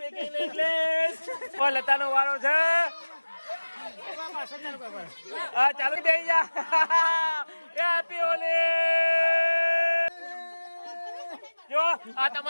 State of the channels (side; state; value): both; inverted; correlation -1.00